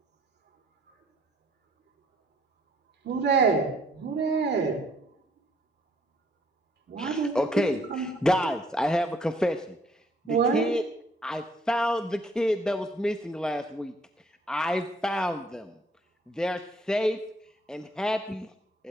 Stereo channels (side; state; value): both; normal; correlation 0.63